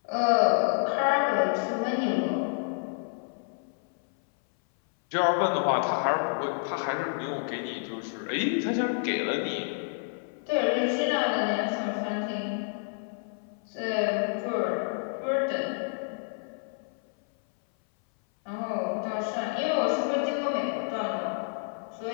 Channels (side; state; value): right; silent; 58 dB below the other